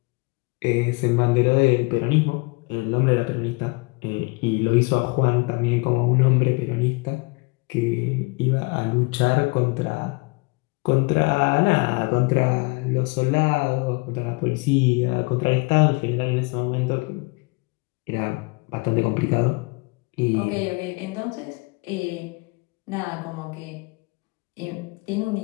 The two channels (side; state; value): right; quieter; 27.8 dB